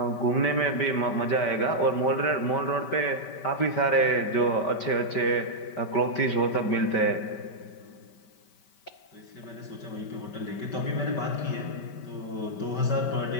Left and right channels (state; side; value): late; right; 5.2 ms